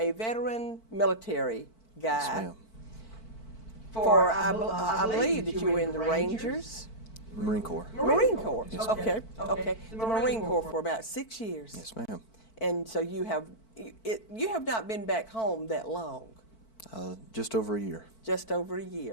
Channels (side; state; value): right; late; 4.5 ms